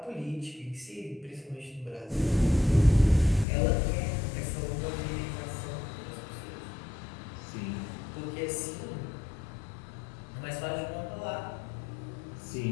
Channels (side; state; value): right; drops out; at 3.5 s